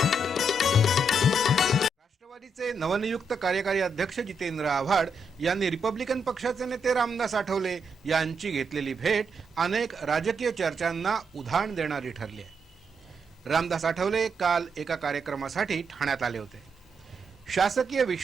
राष्ट्रवादीचे नवनियुक्त कार्यकारी अध्यक्ष जितेंद्र आव्हाड यांनी रिपब्लिकन पक्षाचे नेते रामदास आठवले यांची घेतलेली भेट अनेक राजकीय चर्चांना उधाण देणारी ठरली आहे। रामदास आठवले काल एका कार्यक्रमासाठी ठाण्यात आले होते। शासकीय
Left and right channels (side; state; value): both; normal; correlation 0.79